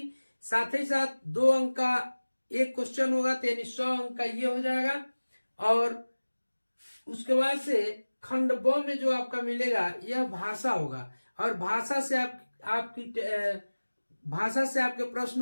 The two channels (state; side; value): inverted; both; correlation -1.00